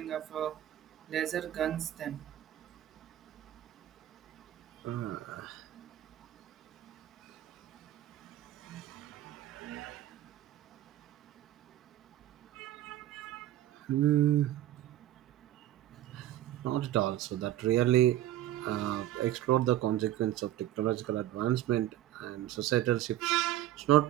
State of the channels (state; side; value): quieter; left; 13.3 dB